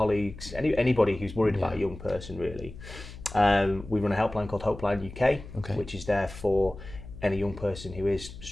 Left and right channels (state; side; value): noise; left; hum, 14 dB below the sound